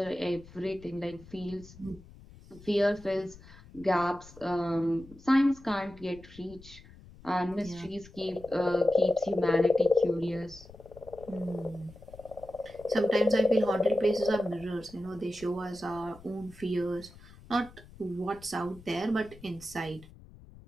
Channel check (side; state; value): left; noise; rumble, 20 dB below the sound